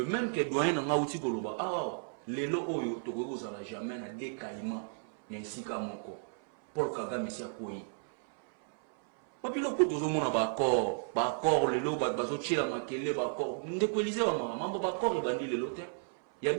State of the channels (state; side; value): silent; left; 56 dB below the other